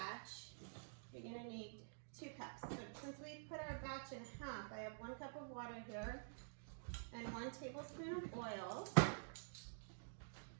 you're going to need 2 cups. So since we put our batch in half, I have 1 cup of water here and 1 tablespoon of oil.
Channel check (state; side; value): silent; left; digital silence